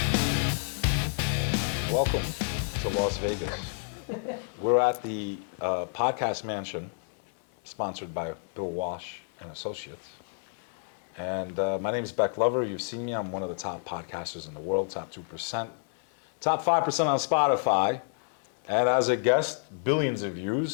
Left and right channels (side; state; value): right; silent; 58 dB below the other